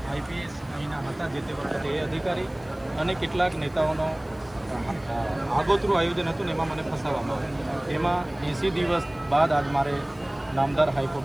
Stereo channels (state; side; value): noise; left; hiss, 28 dB below the sound